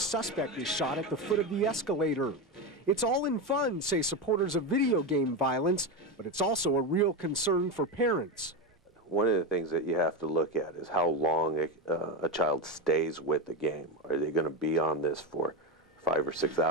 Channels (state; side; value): normal; both; correlation 0.15